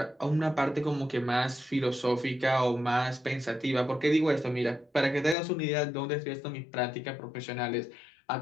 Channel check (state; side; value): drops out; right; at 5.4 s